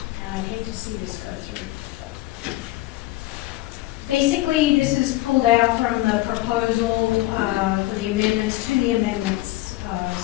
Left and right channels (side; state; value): right; quieter; 18.0 dB